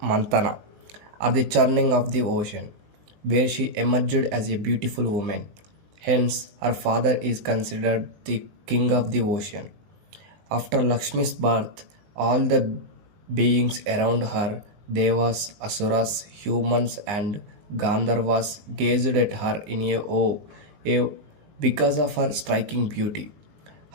Mantana, or the churning of the ocean, where she emerged as a beautiful woman. Hence, her father is considered the king of the ocean. After Lakshmi's birth, all the beings around her, devas, asuras, humans, and Gandharvas, gazed at her in awe because of her striking beauty.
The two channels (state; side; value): late; left; 20 ms